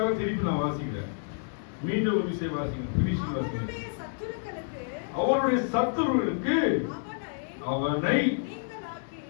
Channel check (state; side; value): silent; right; digital silence